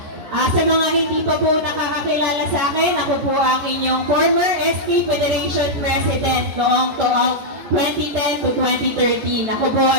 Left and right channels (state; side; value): late; left; 14 ms